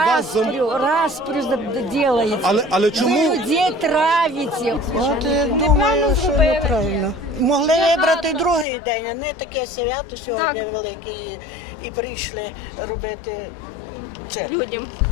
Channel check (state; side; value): drops out; right; at 8.7 s